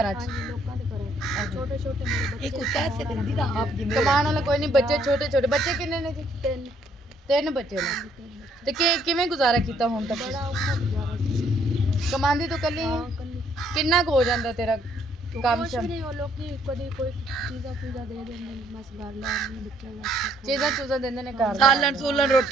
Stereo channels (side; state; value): both; normal; correlation 0.67